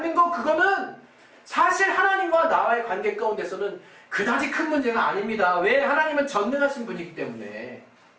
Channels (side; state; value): both; identical; correlation 1.00